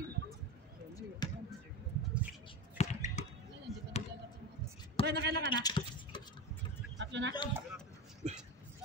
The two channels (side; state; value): both; normal; correlation 0.23